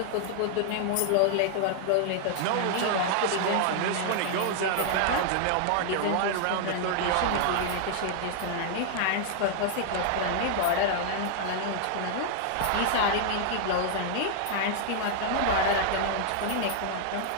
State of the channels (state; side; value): different; both; correlation 0.00